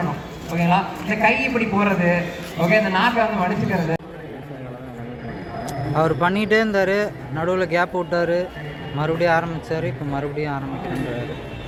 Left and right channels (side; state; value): both; identical; correlation 1.00